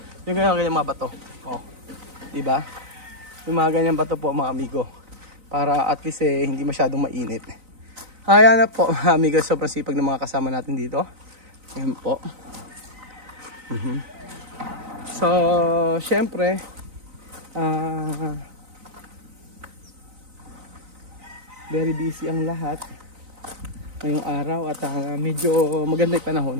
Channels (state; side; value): late; left; 3.9 ms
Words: Yung ganyan mga bato. Oh, di ba? Yung mga ganyan bato po mga amigo. Para at least hindi masyadong mainit. Kaya na po mga amigo, sobrang sipag ng mga kasama natin dito. Ayan po. So, syempre, very busy ang lahat ngayong araw at medyo maganda yung panahon,